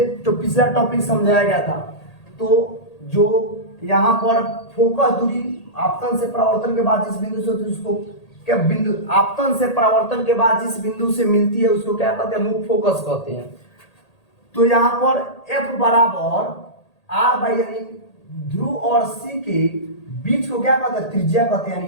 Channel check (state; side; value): late; right; 1.8 ms